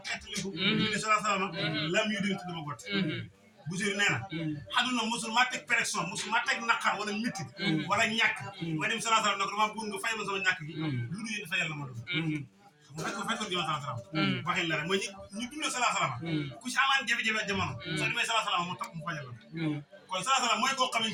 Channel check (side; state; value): both; identical; correlation 1.00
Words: xetliku ministre sallallahu alaihi wasallam lam yudin tuduma gott Boussirou nee na xaduna musul ma teg pression musul ma teg naqar wala métti wala ñàkk ma dem sallallahu alayhi wasallam ne ko dama bëgg nga fayal ma sama ñàkk gi lu dul yéen fayal la ma doon fekkoon jëma sallallahu alayhi wasallam waxin la rek mooy ñu dundee sallallahu alayhi wasallam ku ci amaan jafe-jafe jamono soo demee sallallahu alayhi wasallam mu tax mu fajal la kon sallallahu alayhi wasallam mooy koo